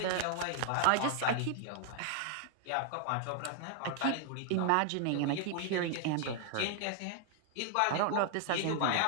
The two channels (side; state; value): both; different; correlation 0.00